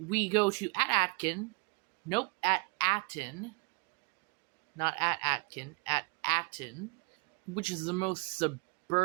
go to at Atten, not at Atkin, at Atten, which is the most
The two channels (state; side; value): quieter; left; 30.6 dB